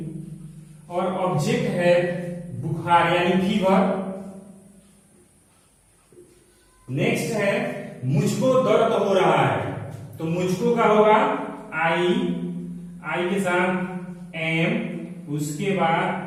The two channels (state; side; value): identical; both; correlation 1.00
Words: और ऑब्जेक्ट है बुखार यानी फीवर. नेक्स्ट है मुझको दर्द हो रहा है. तो मुझको का होगा आई. आई के साथ एम. उसके